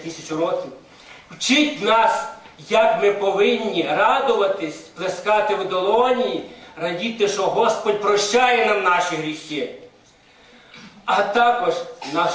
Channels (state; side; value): identical; both; correlation 1.00